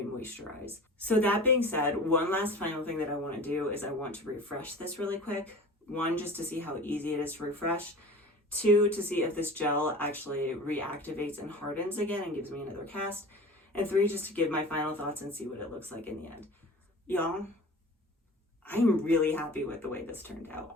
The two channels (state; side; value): normal; both; correlation 0.38